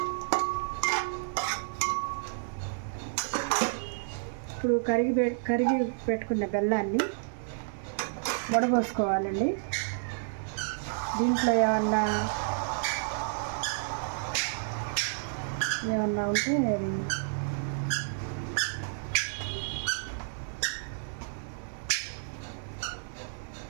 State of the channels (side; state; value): left; silent; 57 dB below the other